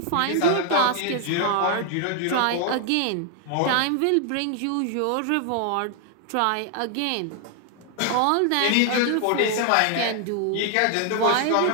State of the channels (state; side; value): different; both; correlation 0.00